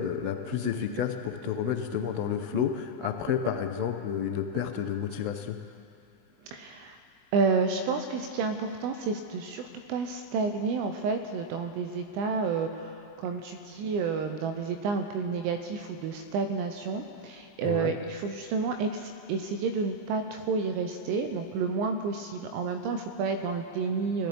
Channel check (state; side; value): late; left; 20 ms